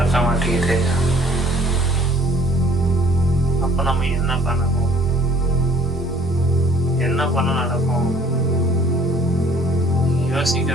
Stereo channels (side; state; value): both; normal; correlation 0.55